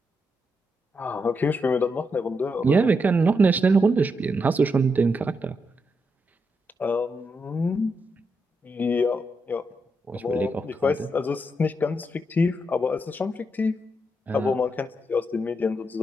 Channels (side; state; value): both; normal; correlation 0.82